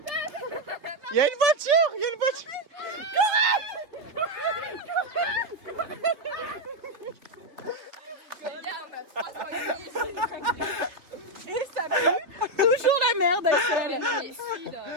Il y a une voiture. Et ça pue toujours la merde, Axel.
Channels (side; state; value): left; late; 3.3 ms